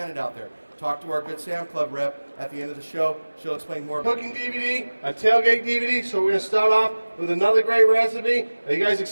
out there. Talk to our Good Sam Club rep at the end of the show. She'll explain more. Cooking DVD, a tailgate DVD. So we're going to start off with another great recipe. Are you guys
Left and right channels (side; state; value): both; inverted; correlation -1.00